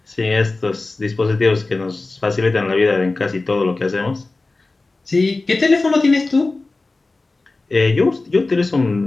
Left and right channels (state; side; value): quieter; right; 3.4 dB